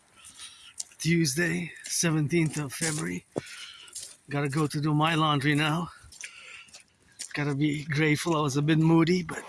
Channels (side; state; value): both; identical; correlation 1.00